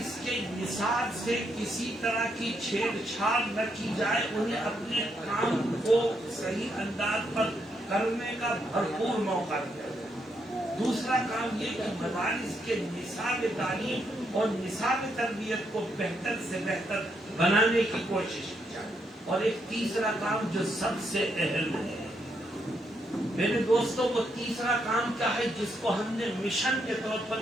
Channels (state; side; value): normal; both; correlation 0.78